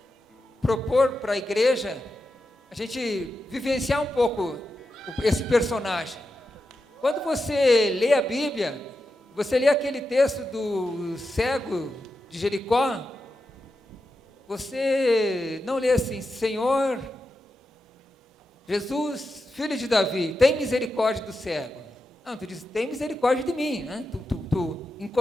propor para a igreja a gente vivenciar um pouco esse personagem. Quando você lê a Bíblia, você lê aquele texto do cego de Jericó, você não lê assim: Senhor, Jesus, filho de Davi, tem misericórdia do cego. Não, tu diz, tem misericórdia de mim, né? Tu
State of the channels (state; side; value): normal; both; correlation 0.89